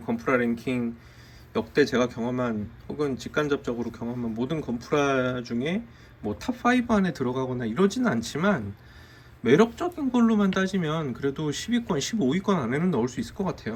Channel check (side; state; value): both; identical; correlation 1.00